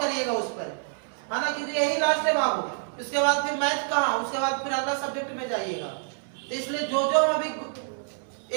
उस पर, है ना, क्योंकि यही लास्ट है बाबू, इसके बाद फिर मैथ कहाँ, उसके बाद फिर अगला सब्जेक्ट में जाइएगा। तो इसलिए जो हम अभी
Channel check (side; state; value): left; silent; digital silence